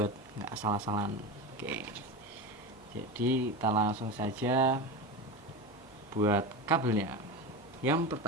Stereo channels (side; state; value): both; normal; correlation 0.23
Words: nggak salah-salahan. Oke, jadi kita langsung saja buat kabelnya. Yang